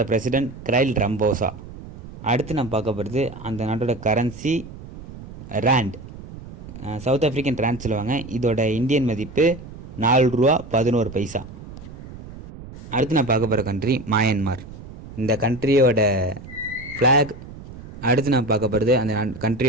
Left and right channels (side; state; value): right; noise; rumble, 15 dB below the sound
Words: பிரசிடெண்ட் கிரைல் ரம்போசா. அடுத்து நம்ம பார்க்க போகிறது அந்த நாட்டோட currency rand. South African rand சொல்லுவாங்க. இதோட இந்தியன் மதிப்பு 4 ரூபா 11 பைசா. அடுத்து நான் பார்க்க போகிற கண்ட்ரி மயன்மார். இந்த கண்ட்ரியோட ஃப்ளாக். அடுத்து நான் பார்க்க போகிறது அந்த